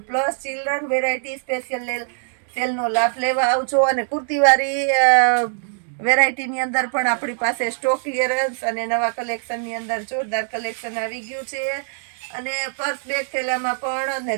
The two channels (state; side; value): silent; left; digital silence